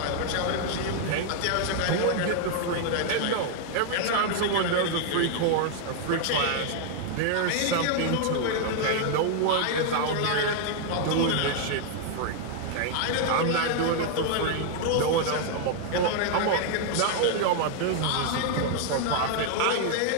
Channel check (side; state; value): both; different; correlation 0.00